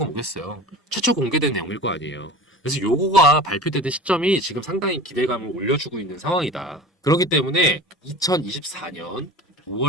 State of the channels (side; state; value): both; normal; correlation 0.37